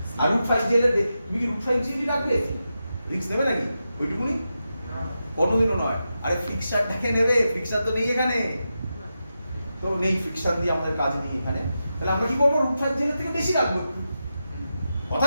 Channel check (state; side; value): inverted; both; correlation -0.89